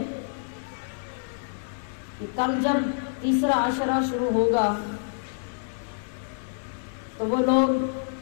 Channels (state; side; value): silent; right; 58 dB below the other